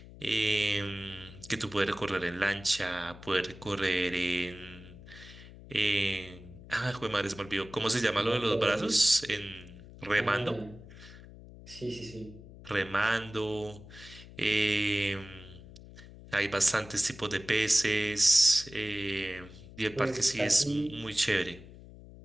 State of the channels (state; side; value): noise; left; hum, 17 dB below the sound